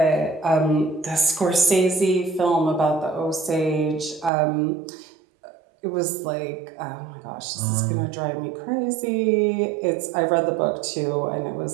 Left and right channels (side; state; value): left; drops out; at 4.3 s